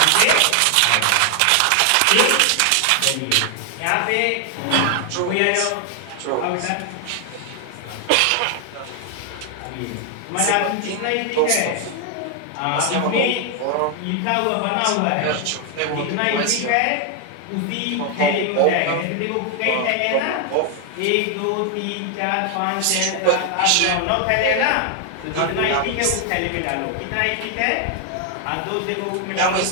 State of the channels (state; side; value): different; both; correlation 0.00